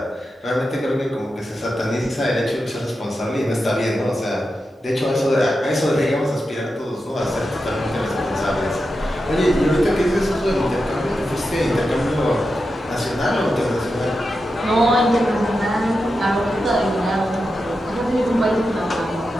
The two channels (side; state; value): both; normal; correlation 0.89